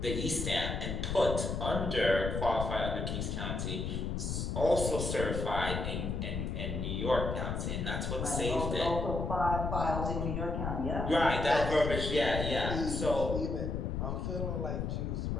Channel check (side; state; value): left; noise; rumble, 2 dB below the sound